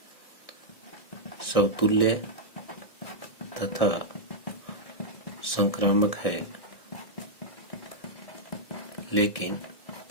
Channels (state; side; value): late; right; 1.7 ms